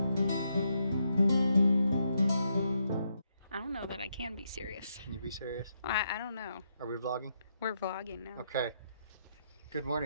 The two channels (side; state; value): both; inverted; correlation -0.80